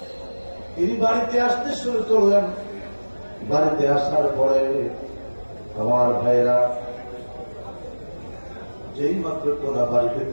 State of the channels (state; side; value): inverted; both; correlation -1.00